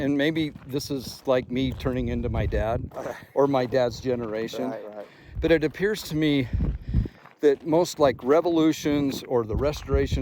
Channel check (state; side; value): identical; both; correlation 1.00